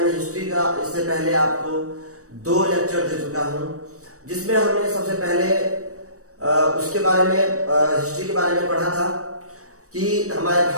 हिस्ट्री का इससे पहले आपको 2 लेक्चर दे चुका हूं, जिसमें हमने सबसे पहले उसके बारे में हिस्ट्री के बारे में पढ़ा था कि हमारे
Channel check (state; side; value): late; left; 0.65 ms